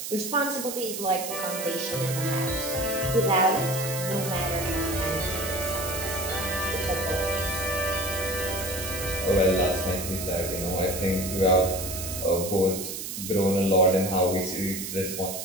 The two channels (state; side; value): noise; right; hiss, 6 dB below the sound